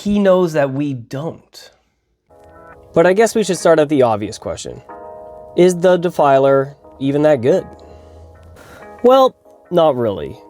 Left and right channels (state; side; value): identical; both; correlation 1.00